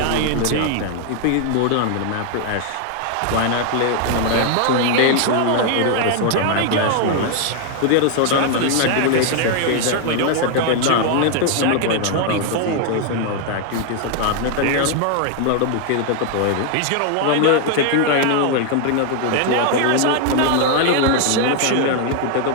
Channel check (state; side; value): different; both; correlation 0.00